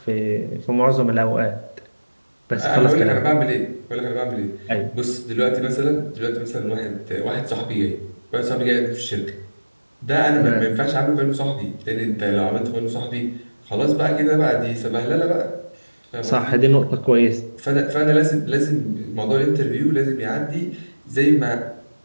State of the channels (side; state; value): both; inverted; correlation -1.00